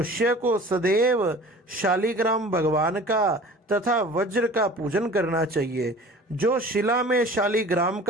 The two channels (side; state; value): both; normal; correlation 0.43